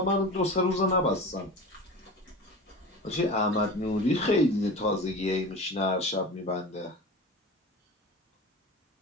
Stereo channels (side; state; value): both; normal; correlation 0.33